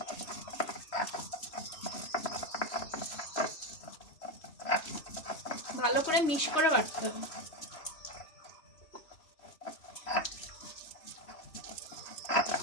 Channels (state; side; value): late; right; 3.1 ms